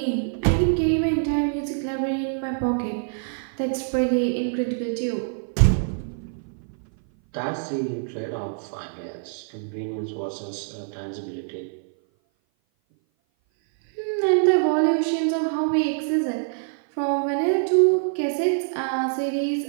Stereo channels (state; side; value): silent; left; 57 dB below the other